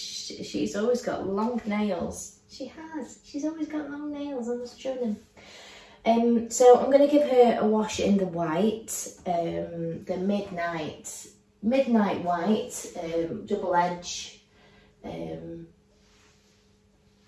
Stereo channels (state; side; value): identical; both; correlation 1.00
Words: always got long nails. She's always got long nails, I must show them. So I'm going to give her a wash in the white, the midnight white, double edge